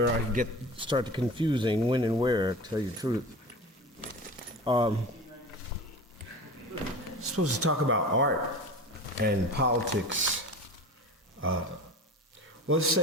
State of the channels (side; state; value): both; normal; correlation 0.33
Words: I start to confusing when and where, to tell you the truth. Supposed to talk about art and politics. Well, let's